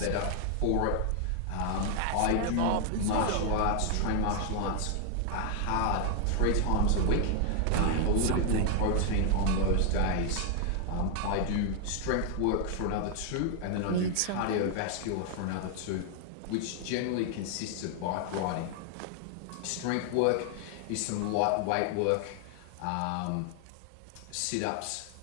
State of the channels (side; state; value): both; different; correlation 0.00